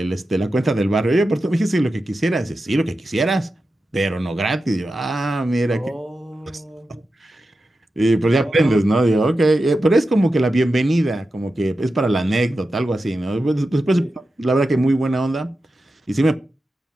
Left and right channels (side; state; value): both; normal; correlation 0.91